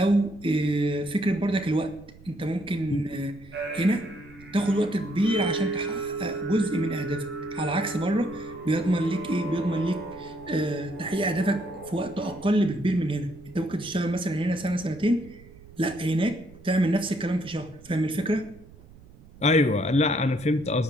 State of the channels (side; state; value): right; noise; rumble, 22 dB below the sound